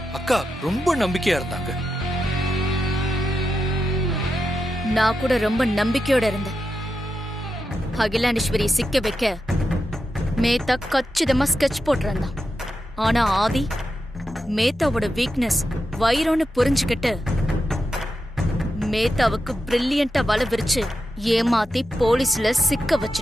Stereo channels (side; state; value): both; normal; correlation 0.88